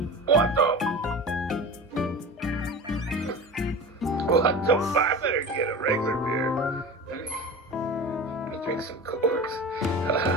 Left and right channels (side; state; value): both; normal; correlation 0.32